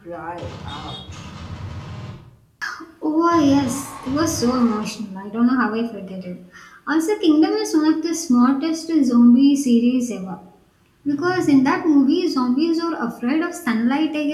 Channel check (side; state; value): both; identical; correlation 1.00